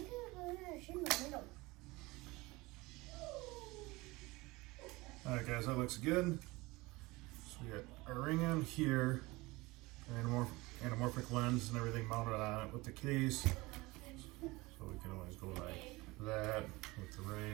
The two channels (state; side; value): quieter; left; 22.1 dB